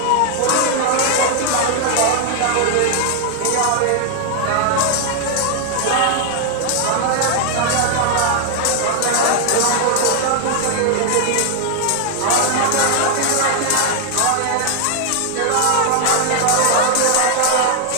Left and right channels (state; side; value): different; both; correlation 0.00